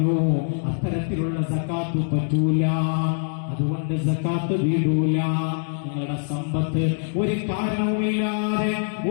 അത്തരത്തിലുള്ള സക്കാത്ത് പറ്റൂല, അതുകൊണ്ട് സക്കാത്ത് വീടൂല. നിങ്ങളുടെ സമ്പത്ത് ഒരു കാരണവുമില്ലാതെ,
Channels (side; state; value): right; silent; digital silence